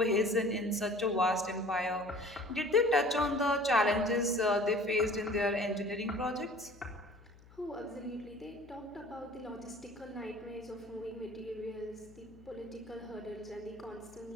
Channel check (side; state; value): left; noise; hum, 24 dB below the sound